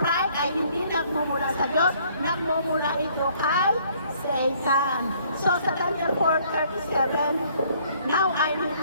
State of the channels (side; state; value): both; inverted; correlation -0.62